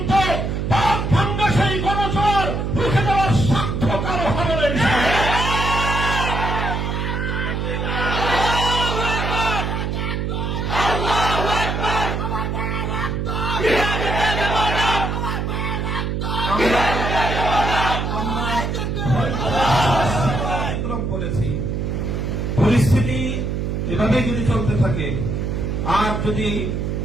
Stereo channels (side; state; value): right; noise; hum, 1 dB below the sound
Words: পাক ভাঙ্গা সেই গণজোয়ার রুখে দেওয়ার সাধ্য কারো হবে না। পরিস্থিতি এভাবেই যদি চলতে থাকে, আর যদি